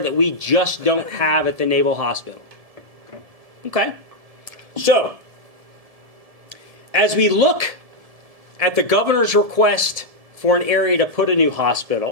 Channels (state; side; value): late; left; 1.7 ms